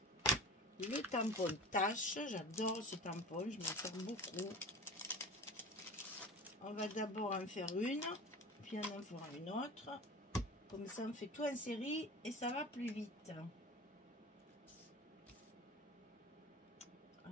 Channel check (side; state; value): both; normal; correlation 0.36